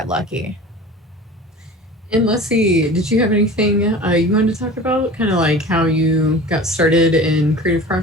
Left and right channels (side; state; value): both; normal; correlation 0.38